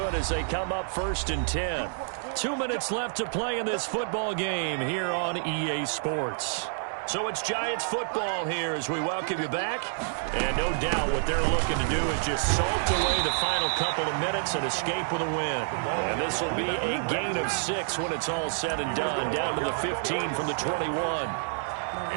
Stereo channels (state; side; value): silent; left; digital silence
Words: as they come up 1st and 10. 2 minutes left to play in this football game here on EA Sports. So it's Giants football here as we welcome you back. And no doubt what they're looking to do is just salt away the final couple of minutes and escape with a win. And this will be a gain of 6 when it's all said and done, down to the 15 from the 21.